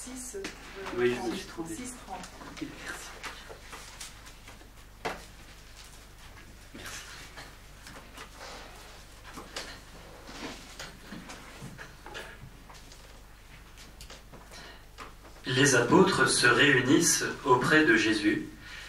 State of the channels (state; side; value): identical; both; correlation 1.00